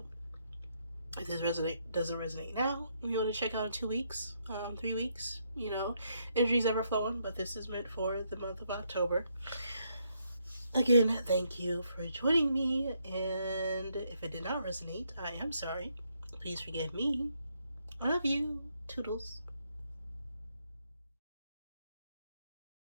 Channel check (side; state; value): both; inverted; correlation -0.76